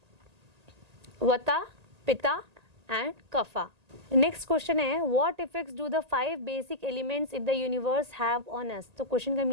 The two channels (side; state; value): left; late; 1.8 ms